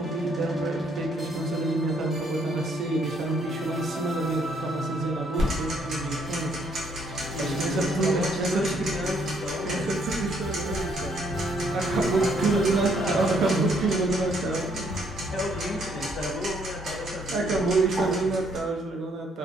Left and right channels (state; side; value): normal; both; correlation 0.68